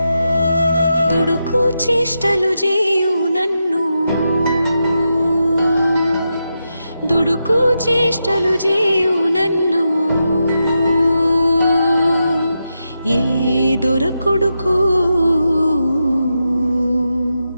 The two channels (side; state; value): both; inverted; correlation -0.87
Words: దుడుకు చేష్టలు చేయు నన్ను, దుడుకు చేష్టలు చేయు నన్ను, ఏ దొరకొడుకు